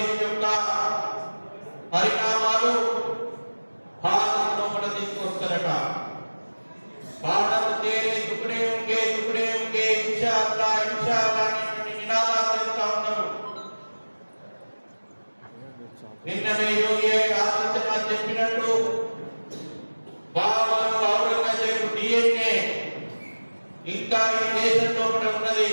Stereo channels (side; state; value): both; inverted; correlation -1.00